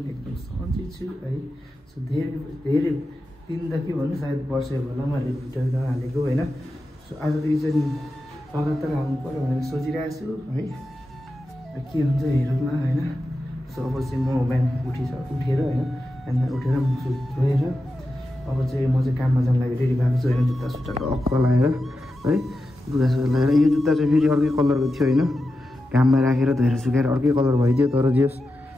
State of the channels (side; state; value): both; normal; correlation 0.90